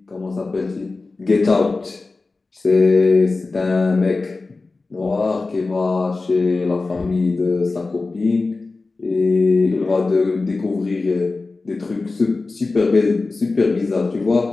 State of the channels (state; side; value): quieter; right; 3.7 dB